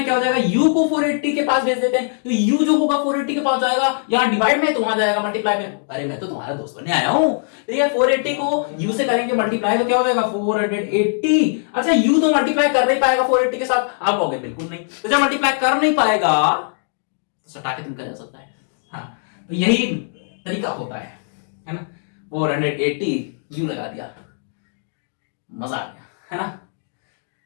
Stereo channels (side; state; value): right; silent; digital silence